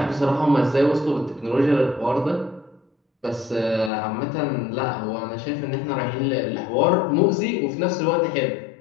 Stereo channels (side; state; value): right; drops out; at 3.9 s